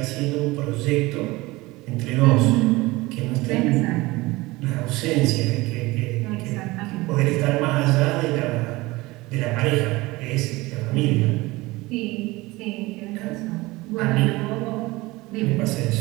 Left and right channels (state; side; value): quieter; left; 21.2 dB